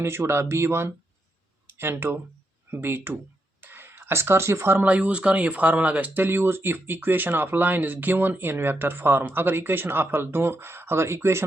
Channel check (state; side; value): normal; both; correlation 0.82